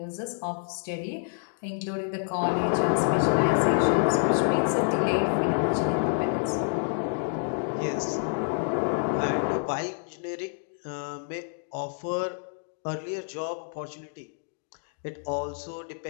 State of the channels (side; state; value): right; silent; digital silence